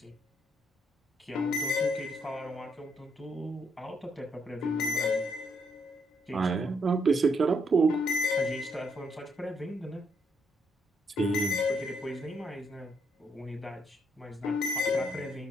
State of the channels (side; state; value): both; normal; correlation 0.74